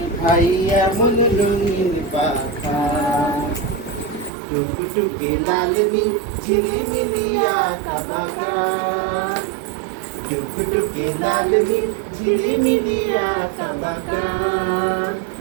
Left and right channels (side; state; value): left; drops out; at 4.3 s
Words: ভাই এমন রঙিন পাখা? টুকটুকে লাল নীল ঝিলিমিলি আঁকা বাঁকা, টুকটুকে লাল নীল ঝিলিমিলি আঁকা বাঁকা।